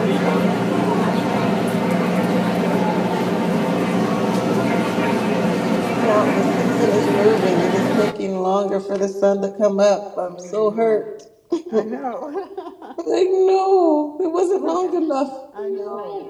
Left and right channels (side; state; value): both; identical; correlation 1.00